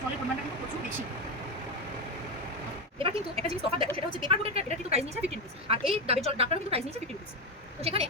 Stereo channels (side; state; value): both; normal; correlation 0.11